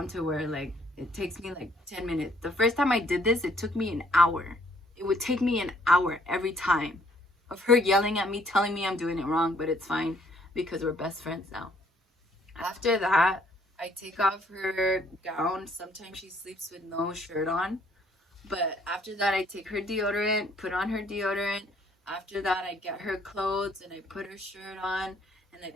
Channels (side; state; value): both; normal; correlation 0.64